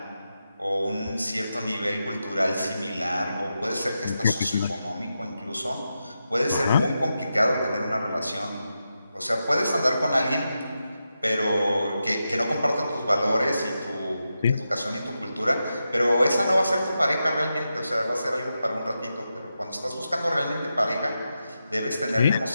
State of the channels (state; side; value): inverted; both; correlation -0.89